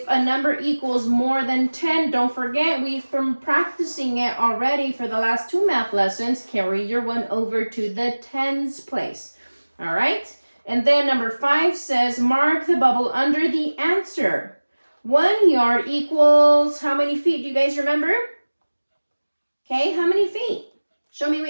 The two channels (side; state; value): both; inverted; correlation -1.00